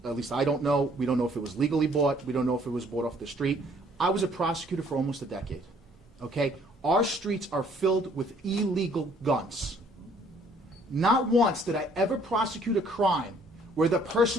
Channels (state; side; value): normal; both; correlation 0.61